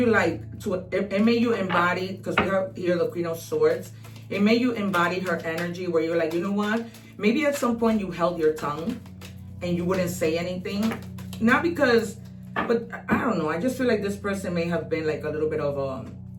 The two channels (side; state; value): both; identical; correlation 1.00